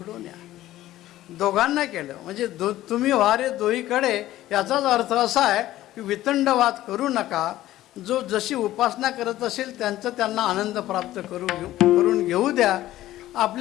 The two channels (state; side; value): quieter; right; 14.7 dB